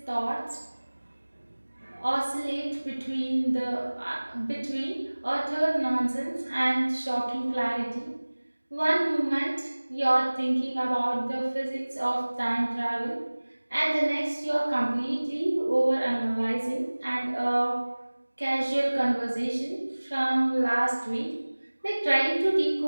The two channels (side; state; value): both; inverted; correlation -1.00